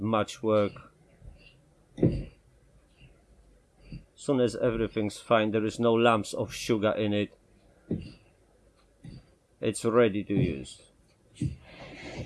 much work. As soon as everything's fine, there is no lumps of sugar in it, it's ready to use.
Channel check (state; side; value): identical; both; correlation 1.00